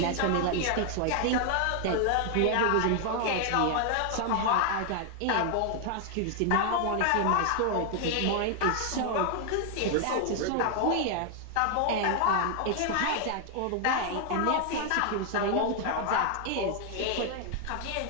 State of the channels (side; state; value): both; different; correlation 0.00